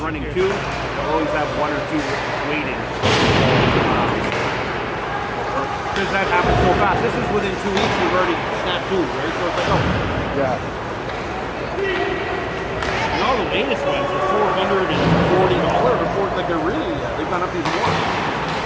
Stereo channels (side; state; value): both; identical; correlation 1.00